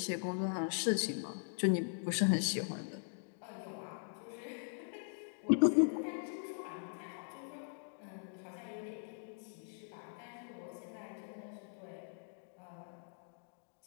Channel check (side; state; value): right; silent; digital silence